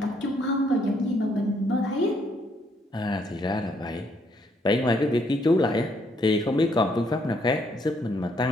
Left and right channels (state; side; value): normal; both; correlation 0.70